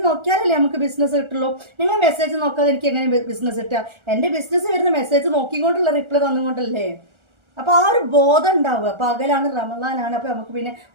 നോക്കിയാലല്ലേ നമുക്ക് ബിസിനസ് കിട്ടുള്ളൂ. നിങ്ങൾ മെസ്സേജ് നോക്കാതെ എനിക്ക് എങ്ങനെ ബിസിനസ് കിട്ടുക? എൻ്റെ ബിസിനസ് വരുന്ന മെസ്സേജ് നോക്കിക്കൊണ്ടുള്ള റിപ്ലൈ തന്നുകൊണ്ടല്ലേ. അപ്പോൾ ആ ഒരു ബോധം ഉണ്ടാവുക. പകലാണ്, റമദാനാണ്, അപ്പോൾ നമുക്ക് പിന്നെ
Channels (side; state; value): left; late; 1.4 ms